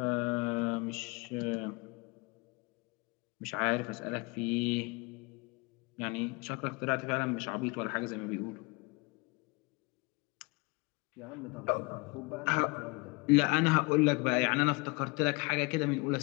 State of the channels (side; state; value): right; quieter; 28.0 dB